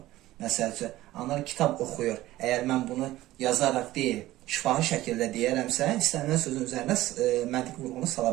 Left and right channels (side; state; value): left; quieter; 16.2 dB